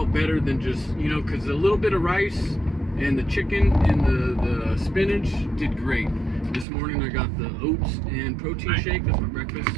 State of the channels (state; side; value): drops out; left; at 6.7 s